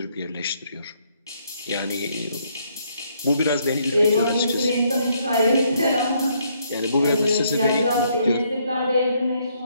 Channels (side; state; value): both; inverted; correlation -0.71